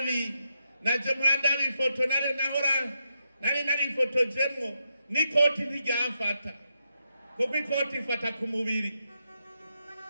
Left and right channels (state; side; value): inverted; both; correlation -0.83